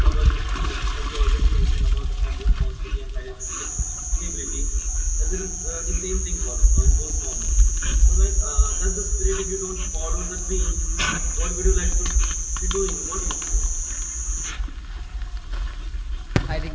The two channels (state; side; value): identical; both; correlation 1.00